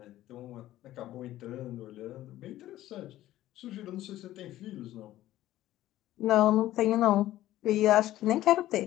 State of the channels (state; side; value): quieter; right; 14.5 dB